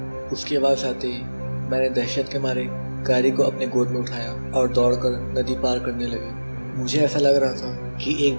उसकी आवाज आते ही मैंने दहशत के मारे कायरी को अपने गोद में उठाया और दौड़कर नदी पार करने लगे। मुझे ऐसा लग रहा था कि एक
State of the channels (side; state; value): both; inverted; correlation -1.00